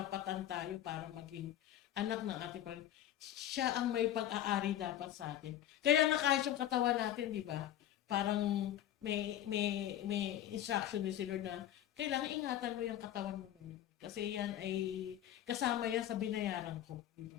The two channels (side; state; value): right; quieter; 11.8 dB